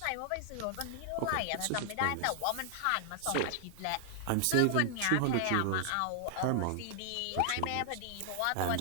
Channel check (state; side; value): different; both; correlation 0.00